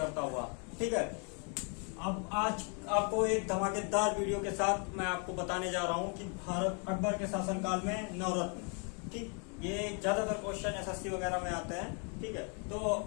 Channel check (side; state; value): right; quieter; 38.3 dB